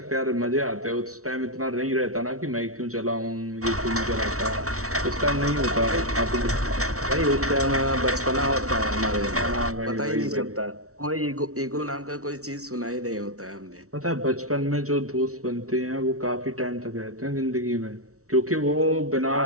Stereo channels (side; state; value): left; late; 0.64 ms